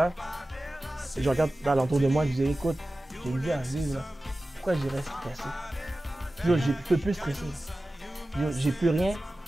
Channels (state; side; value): normal; both; correlation 0.95